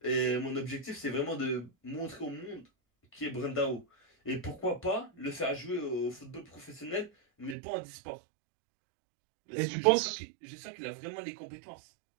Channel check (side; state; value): left; drops out; at 7.6 s